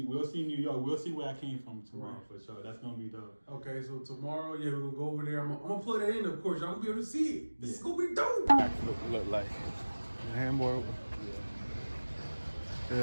New York. We'll see where I came from tomorrow for sure. That's gonna be dope. Okay, so tomorrow, we're gonna go over there. I'm gonna plug that in, of course. Y'all gonna be able to see it. This is gonna be dope. Look like the handboard.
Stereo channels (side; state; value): both; inverted; correlation -1.00